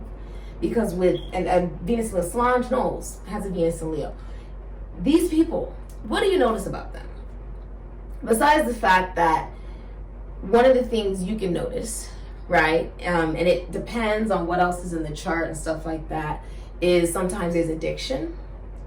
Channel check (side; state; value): both; identical; correlation 1.00